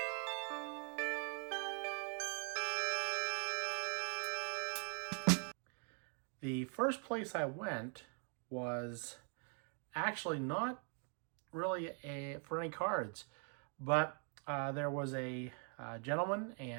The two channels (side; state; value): left; quieter; 38.2 dB